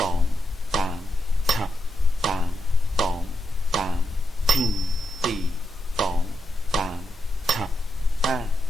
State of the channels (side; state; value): both; normal; correlation 0.85